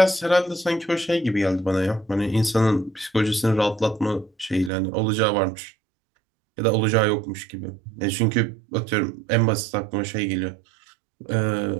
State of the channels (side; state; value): left; drops out; at 4.7 s